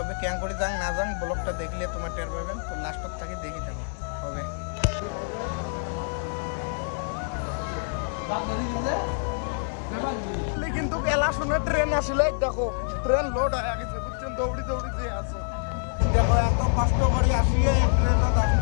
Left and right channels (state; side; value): silent; right; digital silence